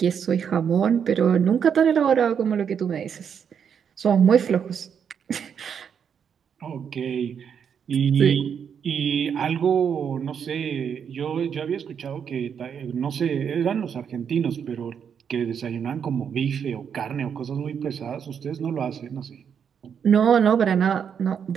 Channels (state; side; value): quieter; left; 7.5 dB